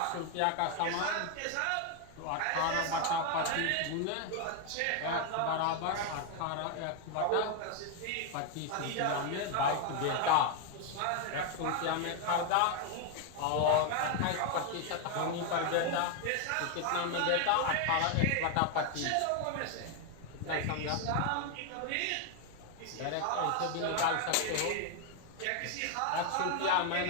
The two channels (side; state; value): both; different; correlation 0.01